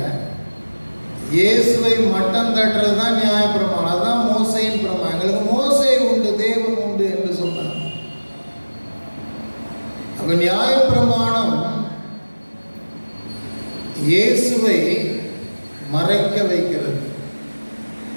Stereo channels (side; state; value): both; inverted; correlation -1.00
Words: இயேசுவை மட்டம் தட்டுறது தான் நியாயப்பிரமாணம். அதுதான் மோசையின் பிரமாணம். எங்களுக்கு மோசை உண்டு, தேவன் உண்டு என்று சொன்னார். அப்ப நியாயப்பிரமாணம் இயேசுவை மறைக்க வைக்கிறது,